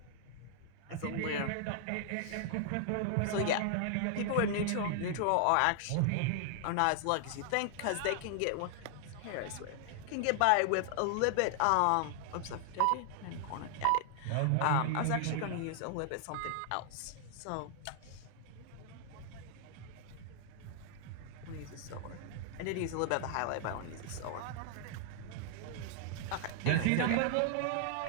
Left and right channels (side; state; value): both; different; correlation 0.00